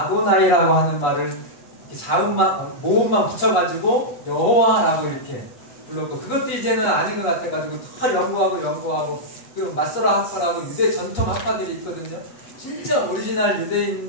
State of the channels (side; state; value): right; late; 8.0 ms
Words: 하는 말을 자음만 모음만 붙여가지고 여호와라고 이렇게 불렀고, 그것도 이제는 아닌 것 같아가지고 다 연구하고 그 마소라 학파라고 유대 전통 학파들이 있거든요. 진짜 오리지널